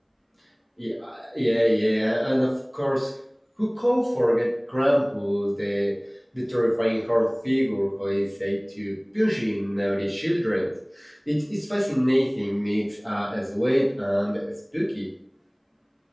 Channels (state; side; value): identical; both; correlation 1.00